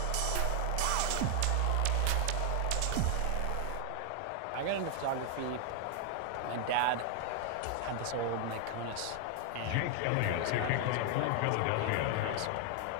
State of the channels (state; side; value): different; both; correlation 0.00